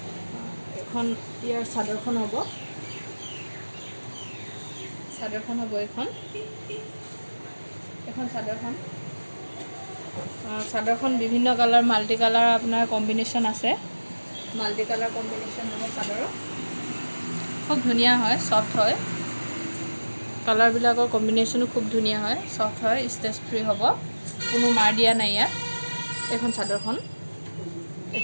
এখন ইয়াৰ চাদৰখন হ'ব এখন চাদৰখন বিভিন্ন কালাৰ মাল্টি কালাৰ আপোনাৰ কম্বিনেশ্যন আছে। মাল্টি কালাৰ কম্বিনেশ্যন হ'ব চাদৰৰ। খুব ধুনীয়া হয়, ছফ্ট হয়, কালাৰবিলাকৰ কম্বিনেশ্যনো খুব ধুনীয়া হয়, ছফ্ট হয়, ষ্টেজ ফ্ৰী হ'ব, কোনো মাৰ দিয়া নাই ইয়াত। এইখন চাদৰখন,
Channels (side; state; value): both; inverted; correlation -1.00